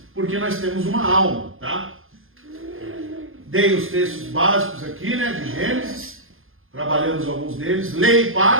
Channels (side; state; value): left; late; 0.60 ms